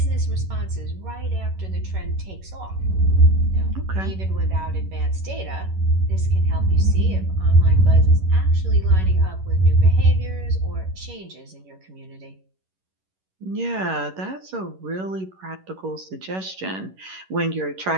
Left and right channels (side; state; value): left; late; 11 ms